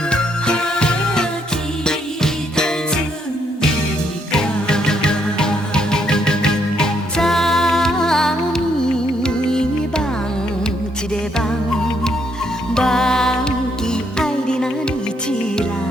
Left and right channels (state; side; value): normal; both; correlation 0.73